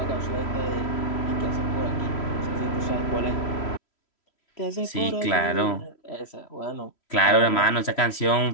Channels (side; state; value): right; late; 3.1 ms